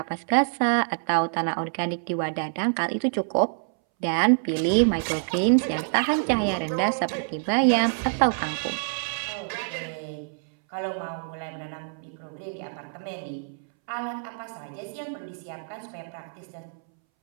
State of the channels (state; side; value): silent; left; 61 dB below the other